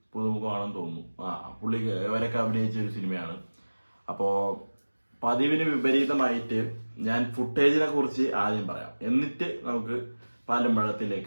പുതുമുഖമാണെന്ന് തോന്നുന്നു. പുള്ളി ഇവരൊക്കെ അഭിനയിച്ച ഒരു സിനിമയാണ്. അപ്പോൾ പതിവിന് വിപരീതമായിട്ട് ഞാൻ ഫുട്ടേജിനെ കുറിച്ച് ആദ്യം പറയാം, എന്നിട്ട് നമുക്ക് പാലും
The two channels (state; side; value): inverted; both; correlation -1.00